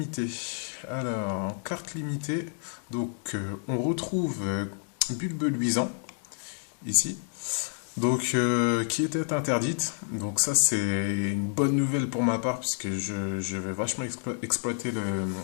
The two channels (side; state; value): right; silent; 59 dB below the other